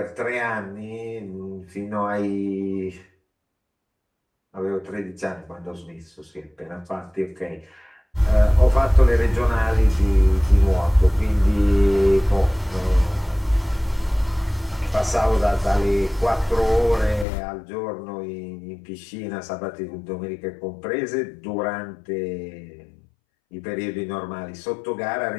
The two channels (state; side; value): drops out; right; at 17.2 s